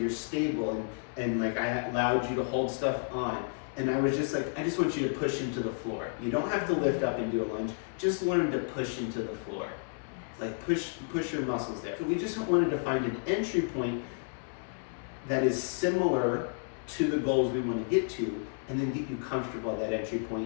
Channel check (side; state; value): right; silent; 57 dB below the other